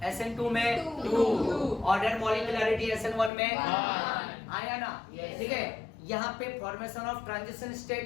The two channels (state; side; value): drops out; right; at 3.3 s